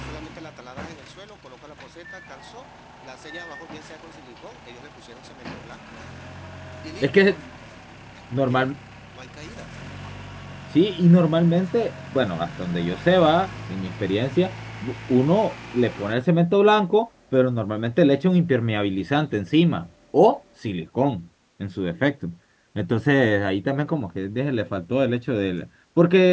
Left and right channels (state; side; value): identical; both; correlation 1.00